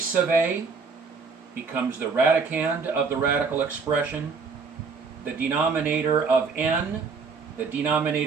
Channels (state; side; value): quieter; left; 4.9 dB